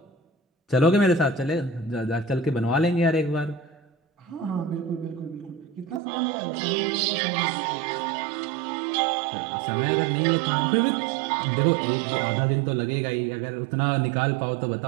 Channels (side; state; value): left; drops out; at 6.0 s